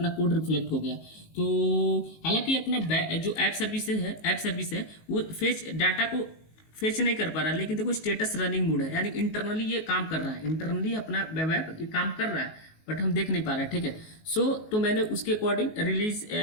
कोड रिफ्लेक्ट हो गया। तो हालांकि अपना जो ऐप सर्विस है वो फेच डाटा को फेच नहीं कर पा रहा, लेकिन देखो स्टेटस रनिंग मोड है, यानी इंटरनली ये काम कर रहा है, इंटरनली अपना वेब ऐप ये काम कर रहा है, बट हम देख नहीं पा रहे हैं, ठीक है। तो मैंने उसके अकॉर्डिंग रिलीज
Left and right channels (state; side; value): late; right; 19 ms